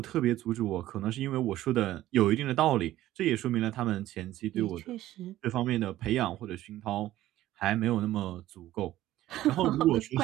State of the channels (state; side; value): quieter; left; 14.5 dB